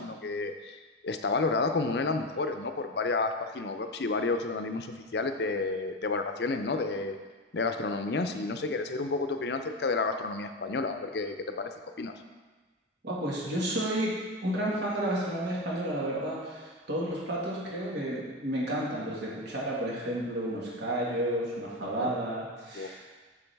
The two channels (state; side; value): normal; both; correlation 0.18